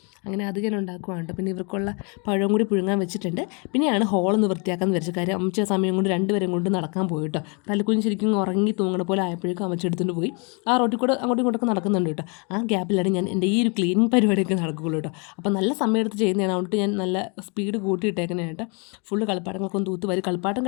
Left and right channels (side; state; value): right; quieter; 34.0 dB